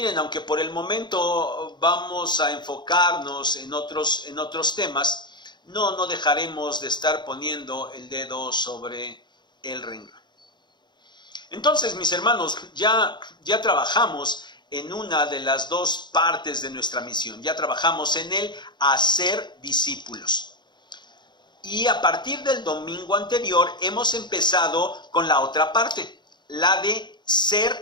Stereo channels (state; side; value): late; right; 0.21 ms